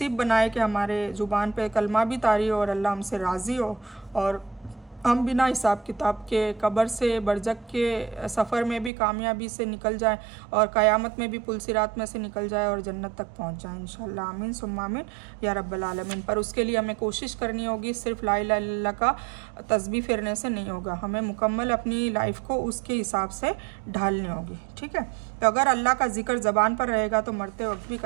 बनाए कि हमारे ज़ुबान पे कलमा भी तारी हो और अल्लाह हमसे राज़ी हो और हम बिना हिसाब किताब के कब्र से बरज़ख के सफ़र में भी कामयाबी से निकल जाएं और क़यामत में भी पुल सिरात में से निकल जाए और जन्नत तक पहुंच जाएं इंशाअल्लाह। आमीन सुम्मा आमीन या रब्बल आलमीन। पर उसके लिए हमें कोशिश करनी होगी, सिर्फ ला इलाहा इल्लल्लाह का तस्बीह फेरने से नहीं होगा, हमें मुकम्मल अपनी लाइफ को उसके हिसाब से ढालनी होगी। ठीक है। तो अगर अल्लाह का जिक्र ज़बान पर रहेगा तो मरते वक्त भी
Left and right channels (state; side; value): drops out; left; at 8.9 s